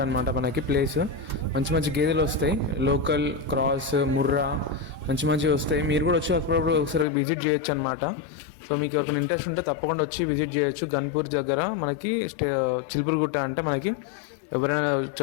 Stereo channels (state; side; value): drops out; right; at 7.1 s